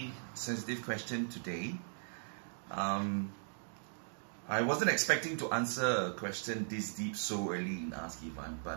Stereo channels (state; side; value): silent; left; digital silence